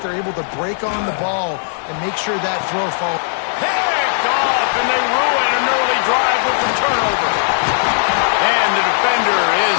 They're able to break on the ball and make sure that throw falls. Picked off, and they ruin an early drive with the turnover. And the defender is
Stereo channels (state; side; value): silent; right; digital silence